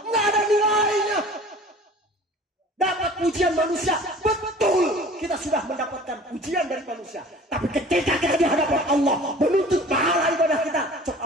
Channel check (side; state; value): both; normal; correlation 0.45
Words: Enggak ada nilainya. Dapat pujian manusia, betul kita sudah mendapatkan pujian dari manusia. Tapi ketika kita di hadapan Allah menuntut pahala ibadah kita, cok